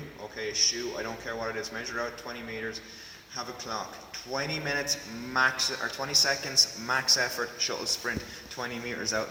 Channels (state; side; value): identical; both; correlation 1.00